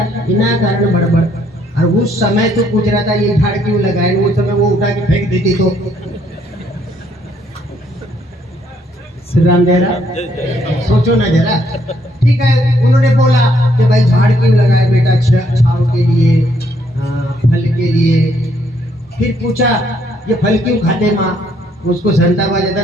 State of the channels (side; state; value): both; normal; correlation 0.69